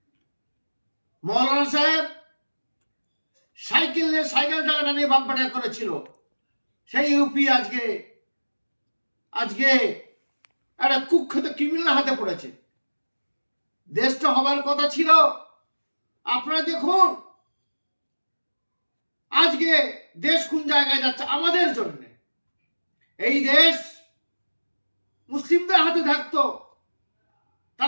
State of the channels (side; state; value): both; inverted; correlation -1.00